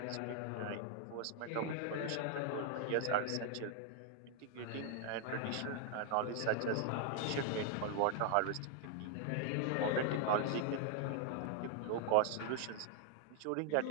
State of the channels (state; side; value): different; both; correlation 0.00